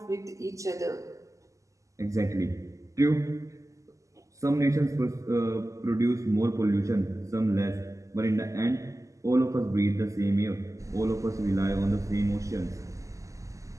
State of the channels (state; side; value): late; left; 0.16 ms